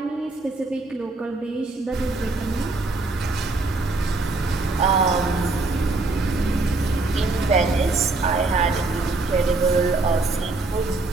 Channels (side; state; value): left; quieter; 3.3 dB